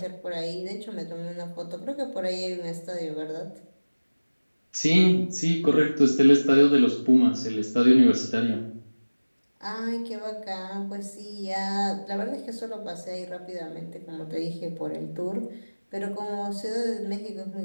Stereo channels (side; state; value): both; inverted; correlation -1.00